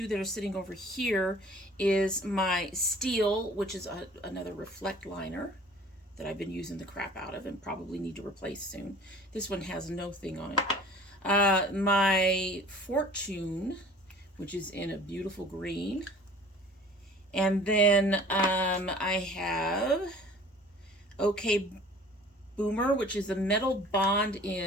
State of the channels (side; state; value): both; normal; correlation 0.48